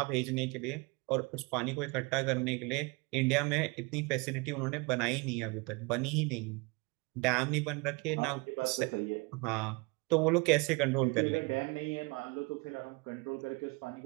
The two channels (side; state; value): left; quieter; 27.7 dB